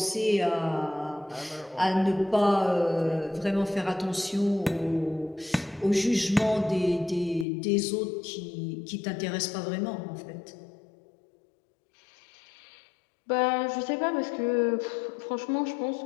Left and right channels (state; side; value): drops out; right; at 7.5 s